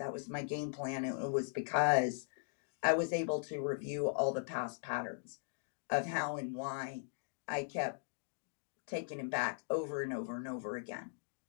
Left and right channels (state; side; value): silent; right; digital silence